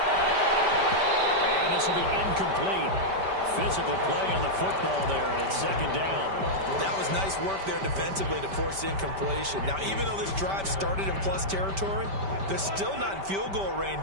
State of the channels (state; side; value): late; left; 5.1 ms